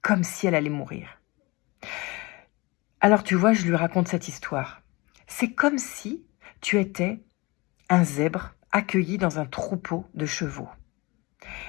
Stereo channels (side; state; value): right; quieter; 24.7 dB